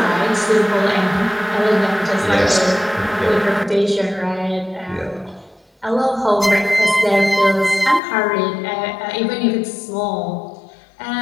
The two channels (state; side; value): drops out; right; at 8.0 s